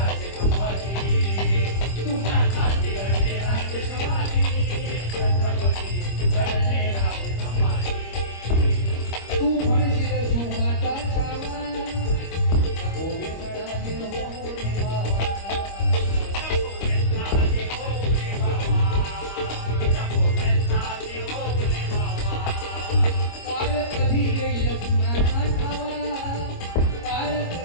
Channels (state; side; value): late; right; 25 ms